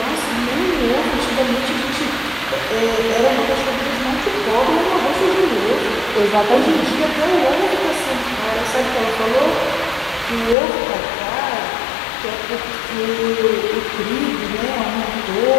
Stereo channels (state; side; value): drops out; right; at 10.6 s